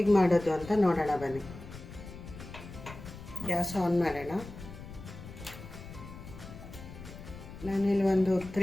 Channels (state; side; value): noise; left; rumble, 14 dB below the sound